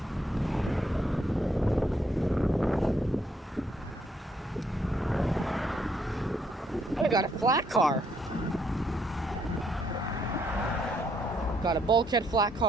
I got a flat car. Got a bulkhead flat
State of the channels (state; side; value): normal; both; correlation 0.71